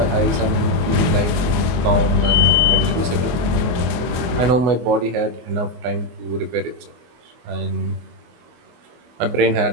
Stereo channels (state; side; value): late; left; 24 ms